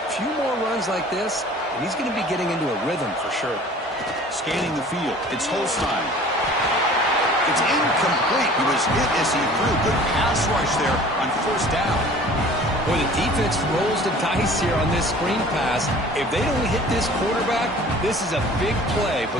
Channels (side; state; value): both; normal; correlation 0.47